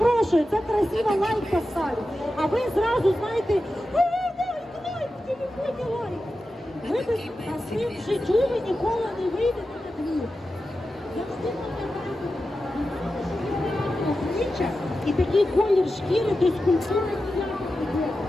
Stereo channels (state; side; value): normal; both; correlation 0.92